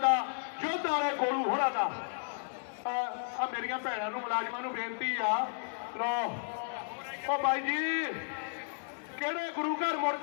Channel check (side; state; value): right; silent; 56 dB below the other